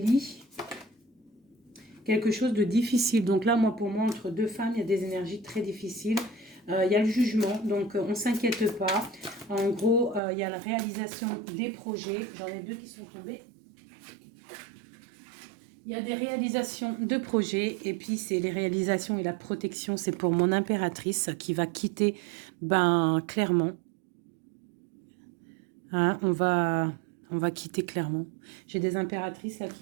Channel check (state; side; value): drops out; left; at 10.2 s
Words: Quelque chose de difficile. Donc là, pour moi, entre deux femmes, il y a des énergies très difficiles. Il y a le jugement, donc on ne s'inquiète pas. En gros, il y a la réalisation des projets. J'en ai deux qui sont tombés. Il y a des réalisations de projets. Et puis, c'est les réalisations et la protection. C'est pour mon impératrice qui va quitter, clairement. Hein, on va quitter clairement. J'ai des impératrices là